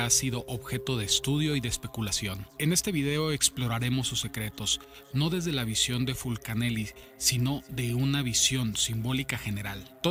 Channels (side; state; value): both; identical; correlation 1.00